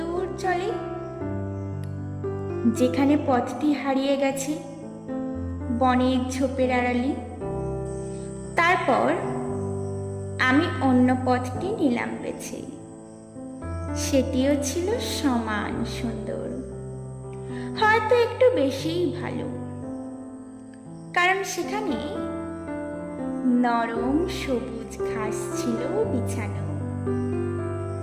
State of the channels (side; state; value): both; identical; correlation 1.00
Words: চলে, যেখানে পথটি হারিয়ে গেছে বনের ঝোপের আড়ালে। তারপর আমি অন্য পথটি নিলাম বেছে। সেটিও ছিল সমান সুন্দর, হয়তো একটু বেশিই ভালো, কারণ সেখানে নরম সবুজ ঘাস ছিল বিছানো।